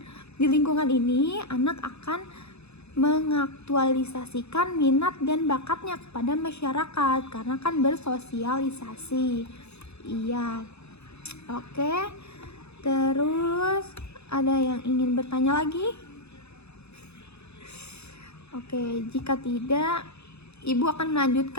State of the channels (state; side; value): late; right; 0.80 ms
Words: Di lingkungan ini anak akan mengaktualisasikan minat dan bakatnya kepada masyarakat karena kan bersosialisasi. Iya. Oke. Terus ada yang ingin bertanya lagi? Oke, jika tidak, Ibu akan